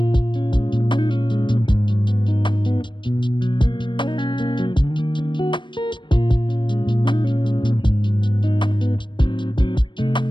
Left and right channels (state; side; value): late; right; 0.23 ms